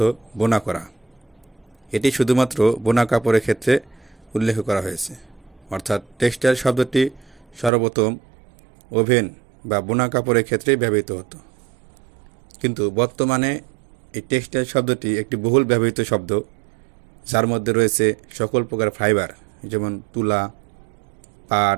বোনা করা। এটি শুধুমাত্র বোনা কাপড়ের ক্ষেত্রে উল্লেখ করা হয়েছে, অর্থাৎ টেক্সটাইল শব্দটি সর্বপ্রথম ওভেন বা বোনা কাপড়ের ক্ষেত্রেই ব্যবহৃত হতো। কিন্তু বর্তমানে এই টেক্সটাইল শব্দটি একটি বহুল ব্যবহৃত শব্দ, যার মধ্যে রয়েছে সকল প্রকার ফাইবার, যেমন তুলা,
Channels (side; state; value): left; drops out; at 7.7 s